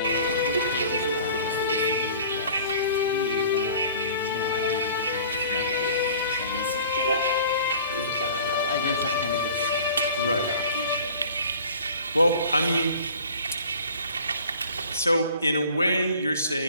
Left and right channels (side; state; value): both; inverted; correlation -0.46